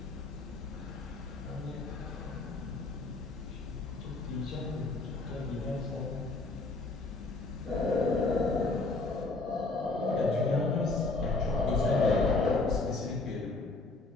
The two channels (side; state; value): right; quieter; 3.4 dB